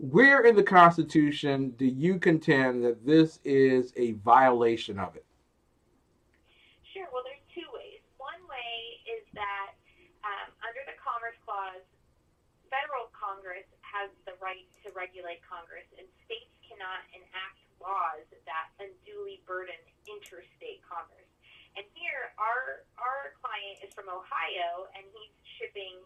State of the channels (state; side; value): identical; both; correlation 1.00